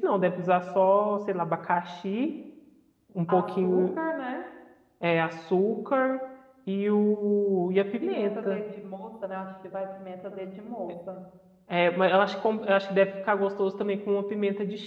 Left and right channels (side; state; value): both; identical; correlation 1.00